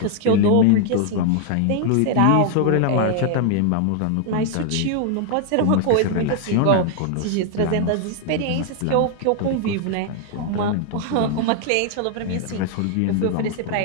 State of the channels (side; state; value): both; different; correlation 0.00